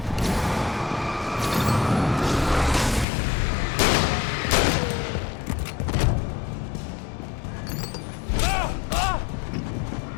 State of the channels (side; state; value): right; drops out; at 3.1 s